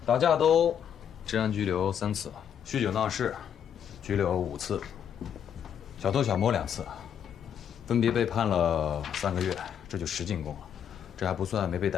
打架斗治安拘留3次，酗酒闹事拘留5次，小偷小摸2次，分别被判了3个月，这就10进宫了。这还不算没被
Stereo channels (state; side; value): quieter; right; 8.7 dB